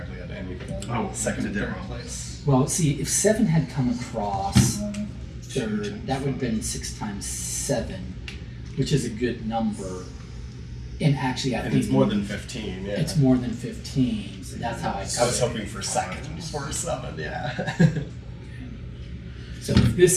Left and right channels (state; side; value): identical; both; correlation 1.00